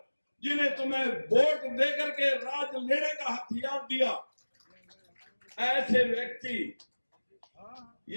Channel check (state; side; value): inverted; both; correlation -1.00